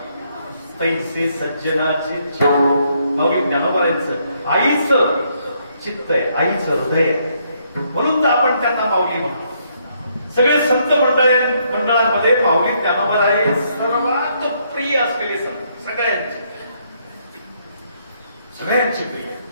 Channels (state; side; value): inverted; both; correlation -0.72